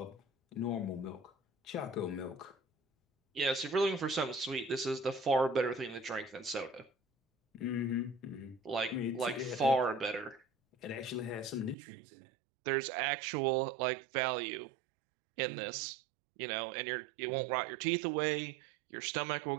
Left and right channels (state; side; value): drops out; left; at 11.8 s